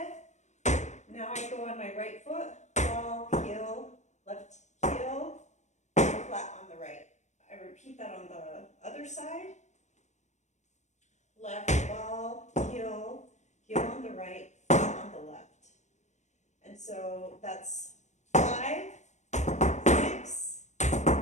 Now I go on my right foot, ball, heel, left heel, flat on the right. I repeat that on the other side. Left ball, heel, heel on the right, flat on the left. And so that's 5, 6,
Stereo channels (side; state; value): right; late; 0.34 ms